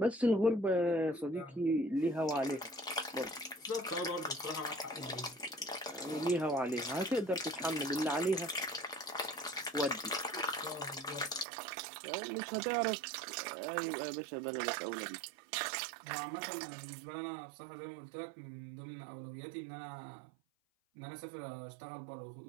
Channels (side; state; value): left; drops out; at 11.5 s